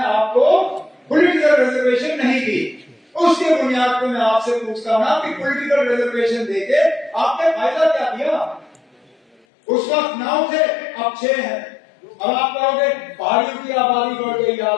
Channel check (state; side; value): drops out; right; at 9.4 s